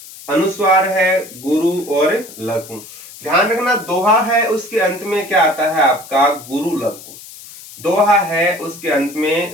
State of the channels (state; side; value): noise; left; hiss, 17 dB below the sound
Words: अनुस्वार है गुरु और लघु। ध्यान रखना, दोहा है उसके अंत में क्या आता है? आपका गुरु लघु। दोहा है उसके अंत